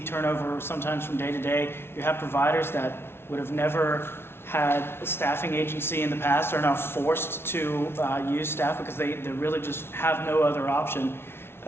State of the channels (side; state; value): right; late; 0.12 ms